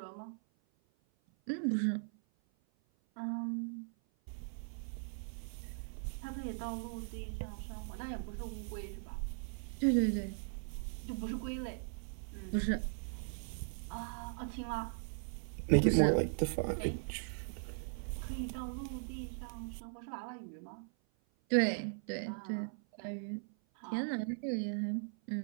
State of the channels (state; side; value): silent; left; 52 dB below the other